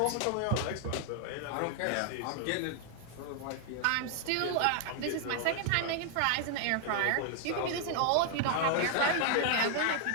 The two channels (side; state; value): both; different; correlation 0.00